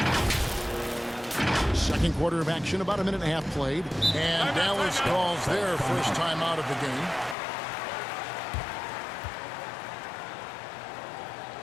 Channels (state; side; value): drops out; right; at 7.4 s